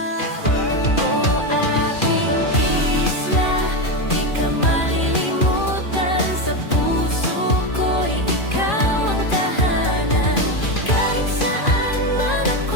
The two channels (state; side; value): late; right; 2.4 ms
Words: Oh, aking isla, di ka malilimutan, sa puso ko'y ikaw ang tahanan. Kahit saan man